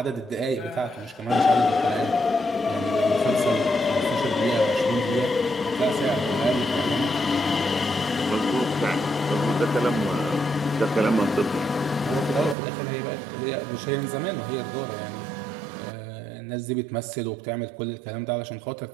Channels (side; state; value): left; drops out; at 12.6 s